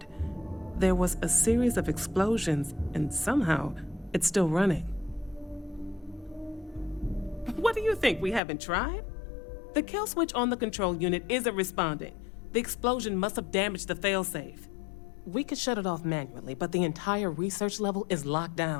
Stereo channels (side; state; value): right; drops out; at 8.4 s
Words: There was a series of explosions, and somehow it's still running. What do you think? We haven't tried? The kill switch on the control unit isn't responding. The explosion must have damaged the failsafe. We could shut it off manually, but the entire research level is locked